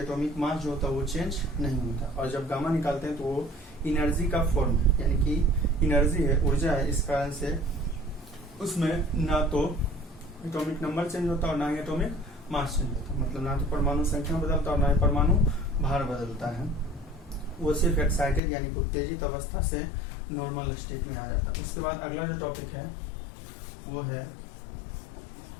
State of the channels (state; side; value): drops out; right; at 18.4 s